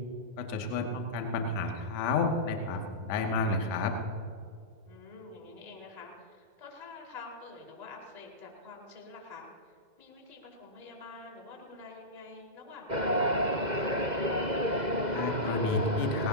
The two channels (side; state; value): left; late; 1.7 ms